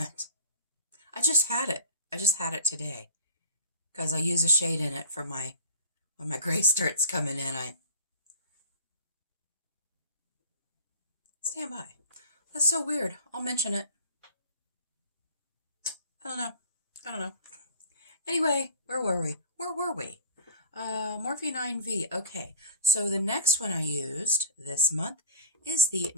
I just had it. I just had it today. Because I use a shade in it for when my gray starts coming in. Stand by. That's so weird. I'll mention it. I don't know. Anyway, where were we? Morphe 9V. Okay, so the next one I used this month is the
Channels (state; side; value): inverted; both; correlation -0.41